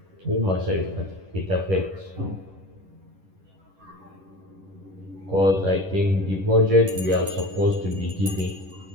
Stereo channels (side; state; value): left; late; 10 ms